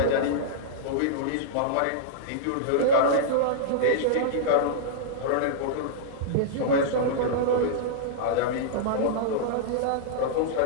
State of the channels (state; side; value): different; both; correlation -0.02